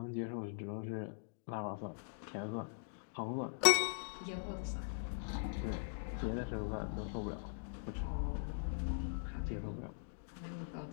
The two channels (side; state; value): right; silent; digital silence